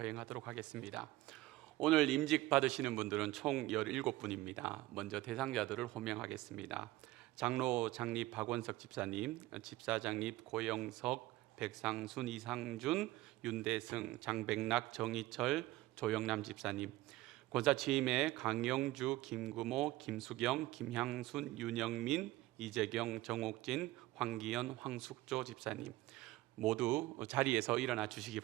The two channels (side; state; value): left; quieter; 18.0 dB